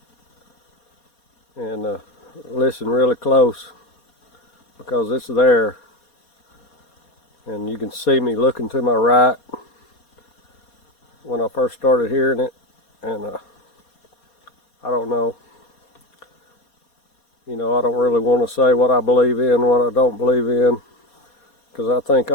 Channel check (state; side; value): late; right; 4.2 ms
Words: and listen really close, because it's there, and you can see me looking to my right when I first started hearing it, and I don't know. I don't really want to say what I believe in, what I don't believe in, because I think